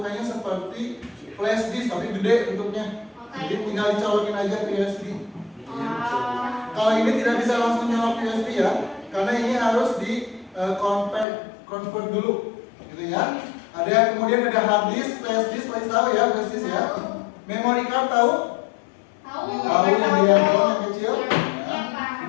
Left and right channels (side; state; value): right; drops out; at 11.2 s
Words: seperti flash disk tapi gede bentuknya. Jadi tinggal dicolokin aja ke USB. Kalau ini tidak bisa langsung nyolok USB ya, karena ini harus di convert dulu, gitu ya. Ada kemudian ada hard disk, flash disk, pasti tahu ya flash disk ya. Memory card tahu? Tahu yang di handphone yang kecil? Ya.